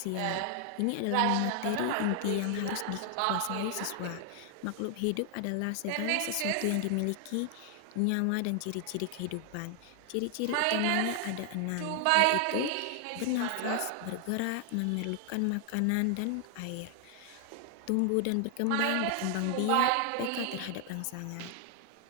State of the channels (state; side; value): different; both; correlation 0.00